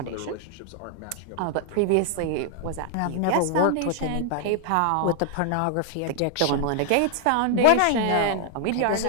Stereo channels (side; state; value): both; different; correlation 0.00